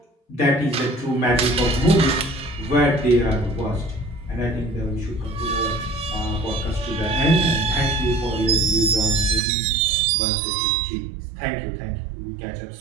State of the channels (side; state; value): left; drops out; at 9.4 s